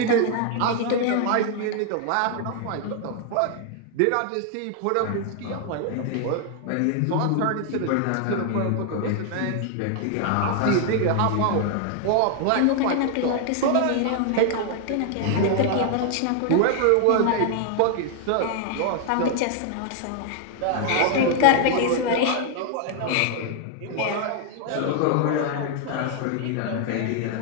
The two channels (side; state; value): both; different; correlation 0.00